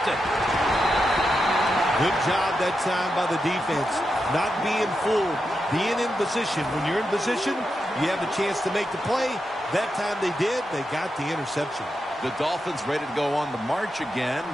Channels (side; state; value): both; normal; correlation 0.87